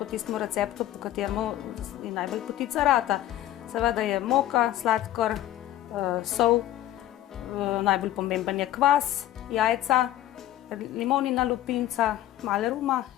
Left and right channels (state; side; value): quieter; right; 13.6 dB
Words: tistem receptu, po kateremu je najbolj potica rata. Seveda je moka, sladkor, sol, najbolj pomemben je kvas, jajca, limonina lupinca, malo ruma